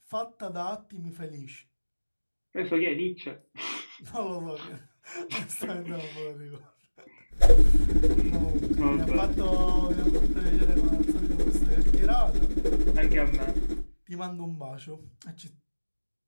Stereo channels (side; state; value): both; inverted; correlation -1.00